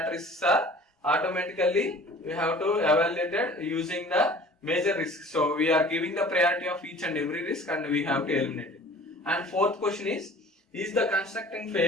risks are automatically we have to evaluate it using the major risks. So we are giving the priority of each and every risk and we have to eliminate it. And fourth question is the constructing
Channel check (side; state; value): both; normal; correlation 0.46